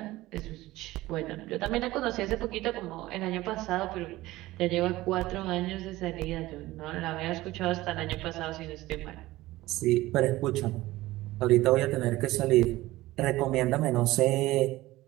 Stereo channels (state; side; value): quieter; left; 17.8 dB